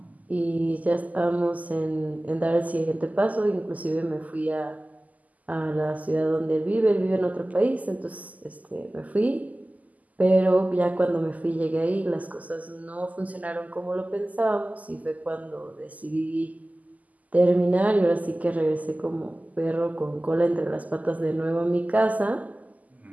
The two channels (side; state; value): left; late; 0.077 ms